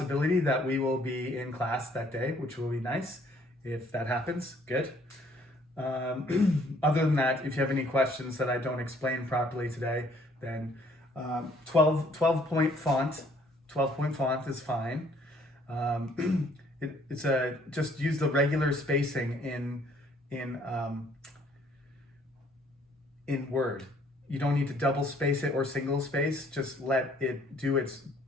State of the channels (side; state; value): both; normal; correlation 0.62